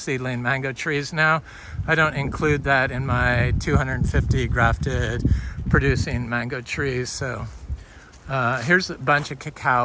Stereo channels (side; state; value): both; identical; correlation 1.00